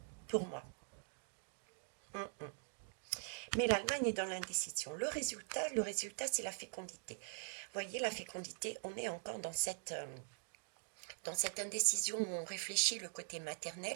pour moi. Mais l'Allemagne est dans l'indécision. Le résultat, c'est la fécondité. Vous voyez, la fécondité, on est encore dans cette indécision où on réfléchit le côté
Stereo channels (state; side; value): silent; left; digital silence